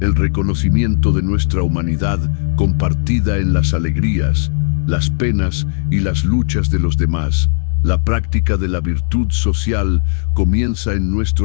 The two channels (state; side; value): silent; right; digital silence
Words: el reconocimiento de nuestra humanidad compartida en las alegrías, las penas y las luchas de los demás. La práctica de la virtud social comienza en